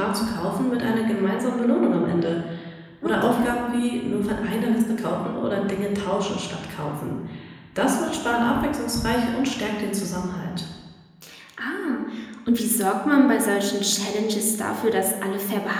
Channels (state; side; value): identical; both; correlation 1.00